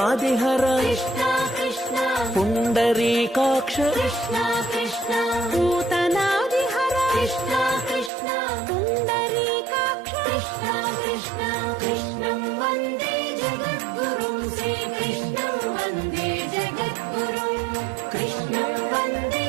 कृष्णा कृष्णा पुण्डरीकाक्ष कृष्णा कृष्णा पूतनादिहर कृष्णा कृष्णा पुण्डरीकाक्ष कृष्णा कृष्णा कृष्णं वन्दे जगद्गुरुं श्रीकृष्णं वन्दे जगद्गुरुं कृष्णं वन्दे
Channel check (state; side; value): drops out; left; at 8.1 s